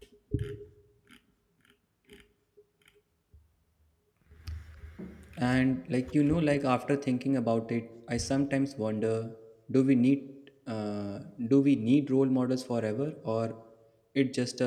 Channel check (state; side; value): identical; both; correlation 1.00